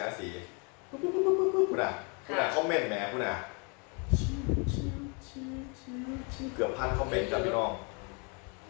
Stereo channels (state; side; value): quieter; right; 34.4 dB